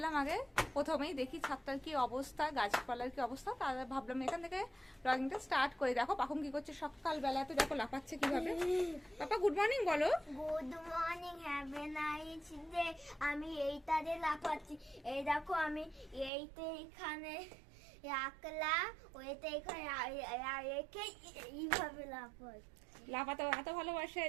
আগে প্রথমেই দেখি ছাদটার কি অবস্থা, গাছপালার কি অবস্থা, তাহলে ভাবলাম এখান থেকে ব্লগিংটা স্টার্ট করে। দেখো পাখুম কি করছে সকালবেলাতে, দেখো লাফাচ্ছে কিভাবে। পাপা গুড মর্নিং বলো। Good morning, have a nice day. আমি এইটাতে লাফাচ্ছি। এই দেখো আমি এইতে এখানে রাখলাম, ওইটা এখানে রেখে এইভাবে লাফাচ্ছি। লাফাতে এত ভালোবাসে।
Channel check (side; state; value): left; drops out; at 16.3 s